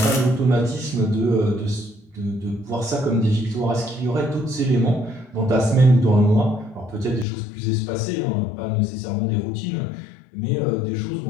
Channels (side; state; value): right; drops out; at 7.2 s